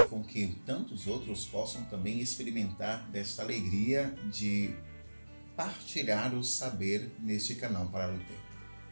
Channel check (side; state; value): both; inverted; correlation -1.00